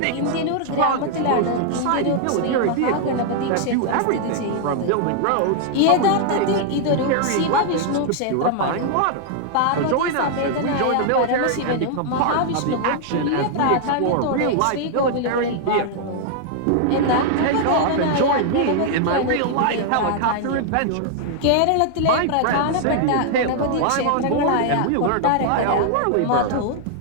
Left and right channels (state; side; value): different; both; correlation 0.00